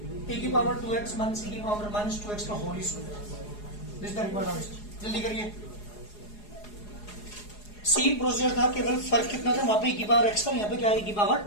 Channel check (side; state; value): right; late; 4.8 ms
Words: e की पावर 2x माइनस e की पावर माइनस 2x का whole square. This the required answer. जल्दी करिए, सेम प्रोसीजर था, केवल फर्क कितना था, वहां पे e की पावर x था, यहाँ पे क्या है e की पावर